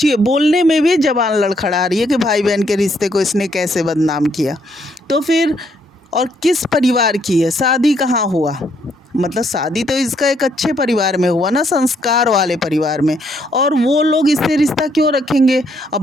बोलने में भी ज़बान लड़खड़ा रही है कि भाई बहन के रिश्ते को इसने कैसे बदनाम किया। तो फिर और किस परिवार की है, शादी कहाँ हुआ, मतलब शादी तो इसका एक अच्छे परिवार में हुआ ना, संस्कार वाले परिवार में, और वो लोग इससे रिश्ता क्यों रखेंगे। अब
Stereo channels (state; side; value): normal; both; correlation 0.71